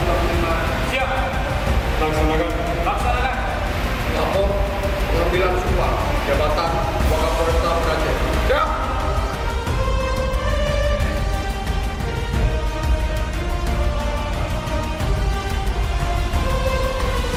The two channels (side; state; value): both; identical; correlation 1.00